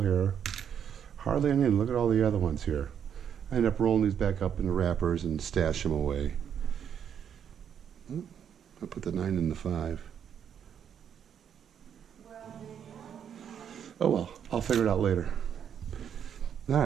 here. Hardly any. Look at all the other ones here. I end up rolling these back up into wrappers and stash them away. I put the 9 in the 5. Oh well, I'll figure it out later. All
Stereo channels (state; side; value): quieter; left; 8.4 dB